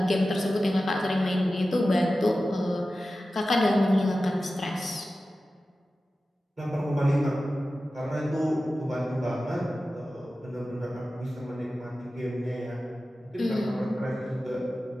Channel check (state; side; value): normal; both; correlation 0.94